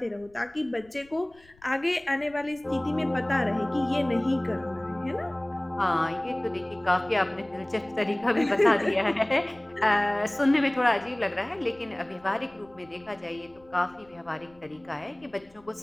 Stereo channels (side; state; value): left; noise; rumble, 29 dB below the sound